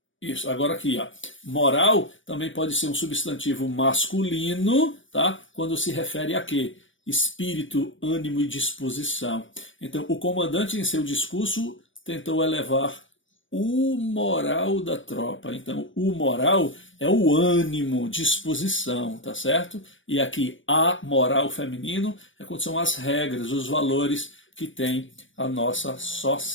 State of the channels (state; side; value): late; right; 0.56 ms